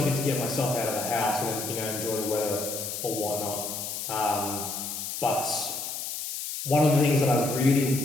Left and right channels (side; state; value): left; noise; hiss, 5 dB below the sound